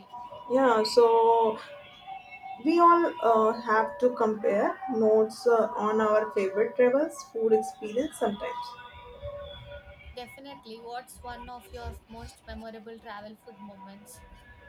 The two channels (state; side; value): identical; both; correlation 1.00